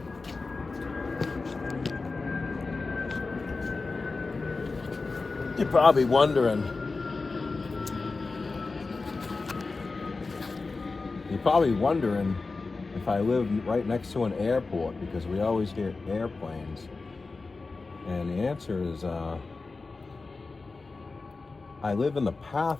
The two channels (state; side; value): quieter; right; 3.9 dB